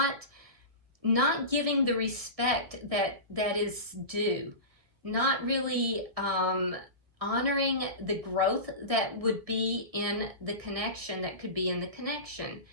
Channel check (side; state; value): left; late; 1.6 ms